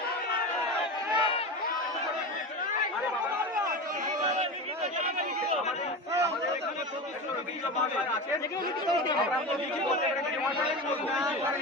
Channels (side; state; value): both; normal; correlation 0.25